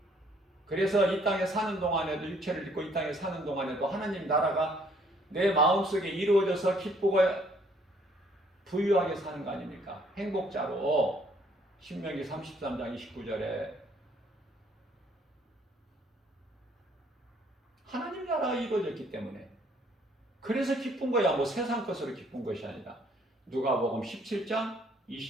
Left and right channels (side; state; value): both; normal; correlation 0.63